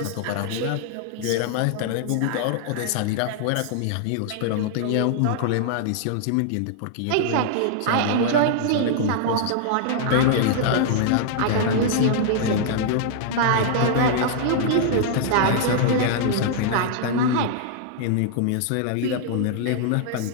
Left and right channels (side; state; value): both; different; correlation -0.01